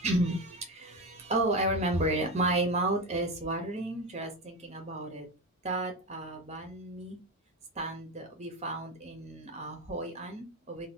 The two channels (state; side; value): normal; both; correlation 0.20